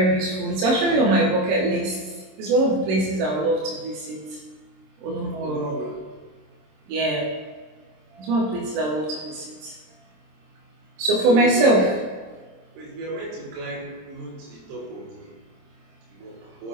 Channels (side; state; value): left; late; 26 ms